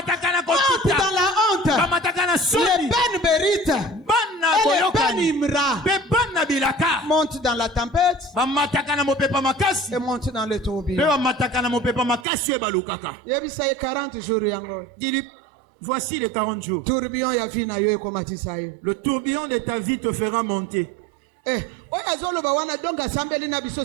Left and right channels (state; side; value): drops out; left; at 12.2 s